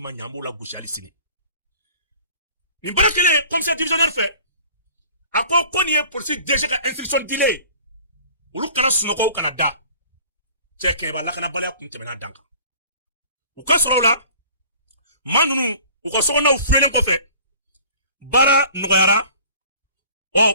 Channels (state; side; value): inverted; both; correlation -0.49